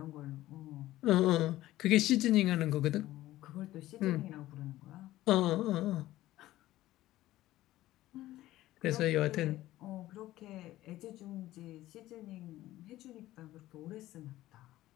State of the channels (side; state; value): right; quieter; 15.6 dB